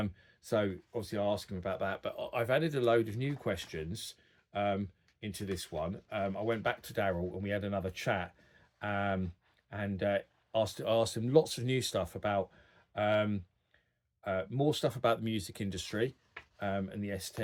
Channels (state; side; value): identical; both; correlation 1.00